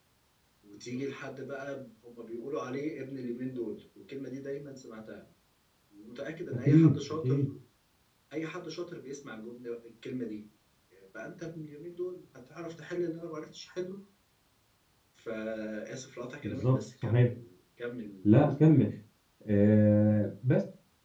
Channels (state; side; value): identical; both; correlation 1.00